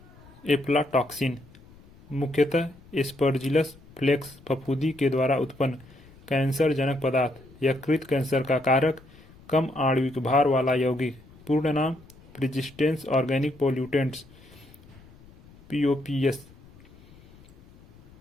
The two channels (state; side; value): noise; left; rumble, 24 dB below the sound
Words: एफ्लाटॉक्सिन, मुख्यतः एस्परजिलस फ्लेक्स फफूंदी के द्वारा उत्पन्न कैंसर जनक पदार्थ। यकृत कैंसर का कारक, कम आणविक भार वाला यौगिक। पूर्ण नाम, प्रिजिस्टेंस ऑर्गेनिक पोल्यूटेंट्स, POPS।